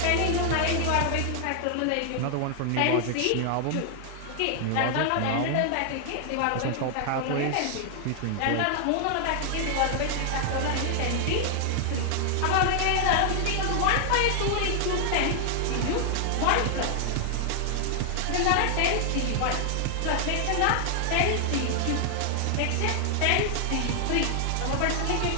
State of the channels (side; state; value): both; different; correlation 0.00